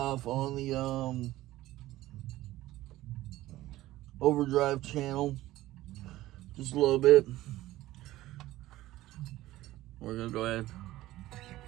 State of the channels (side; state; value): left; quieter; 16.1 dB